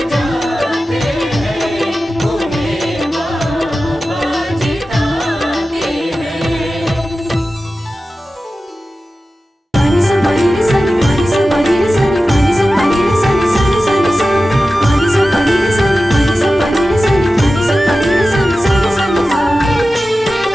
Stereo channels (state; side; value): normal; both; correlation 0.94